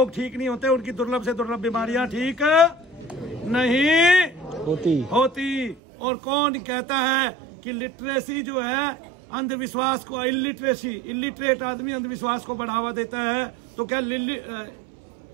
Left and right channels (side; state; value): left; drops out; at 5.8 s